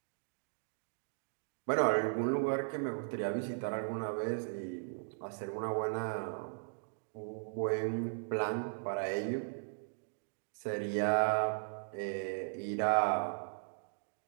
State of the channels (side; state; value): left; silent; digital silence